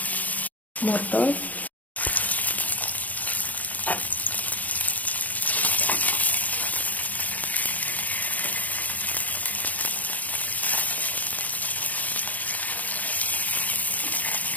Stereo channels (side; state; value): right; late; 0.077 ms